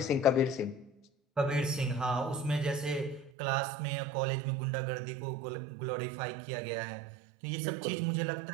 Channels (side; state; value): left; drops out; at 3.3 s